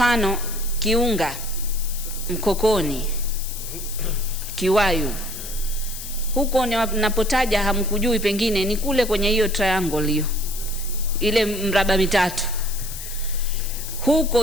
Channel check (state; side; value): noise; left; hiss, 10 dB below the sound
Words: Kiunga, Mkokoni, Kiwayu, huko napotaja hamkujui, pengine ni kule kwenye hiyo triangle hiyo, ile mraba mitatu.